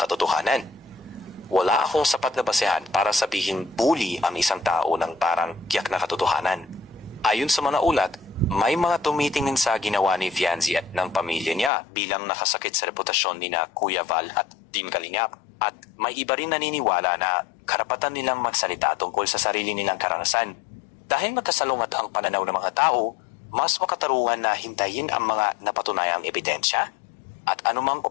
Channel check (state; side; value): drops out; right; at 11.7 s